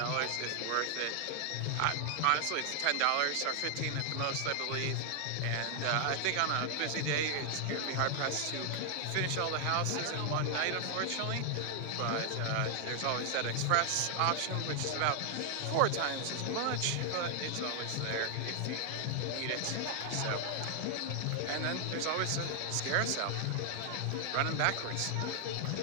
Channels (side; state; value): both; different; correlation 0.00